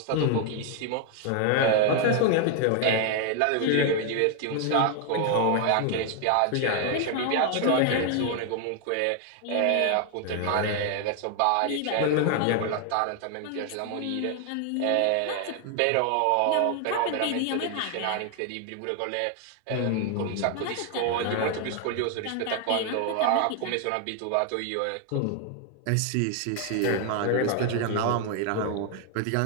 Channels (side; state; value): both; different; correlation 0.00